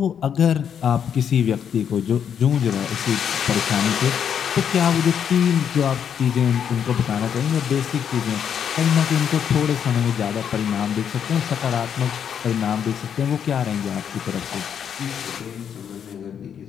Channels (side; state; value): right; quieter; 8.2 dB